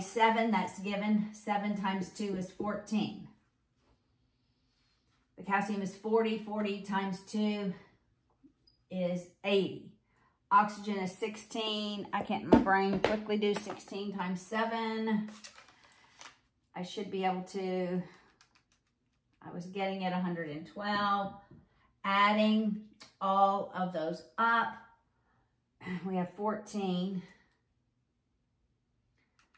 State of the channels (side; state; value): both; identical; correlation 1.00